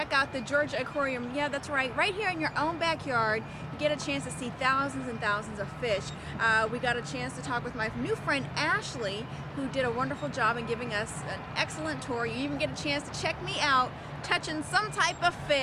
out the Georgia Aquarium. Yeah, that's right. Right here in your own backyard, you get a chance to see thousands and thousands of fish. We got a chance to talk with my new friend Ashley, who did a wonderful job in giving us an excellent tour. You even get a chance to check me out touching some type of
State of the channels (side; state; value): both; identical; correlation 1.00